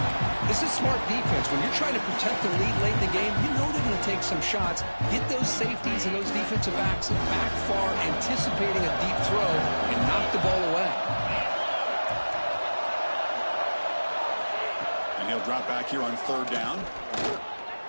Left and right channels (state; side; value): inverted; both; correlation -1.00